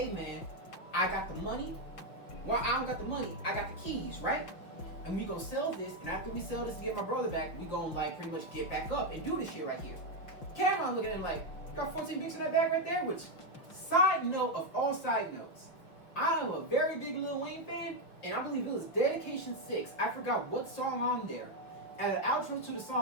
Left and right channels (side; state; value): right; late; 6.0 ms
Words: man, I got the money. Well, I don't got the money, I got the keys, right? And we gonna sell this, and after we sell this to get my brother back, we gonna like pretty much get back up and do this shit right here. Cameron looking at him like, you got 14 bricks in that bag right there? Which, side note of all side notes, I am a very big Lil Wayne fan, and I believe it was Dedication 6. I forgot what song on there. At the outro to the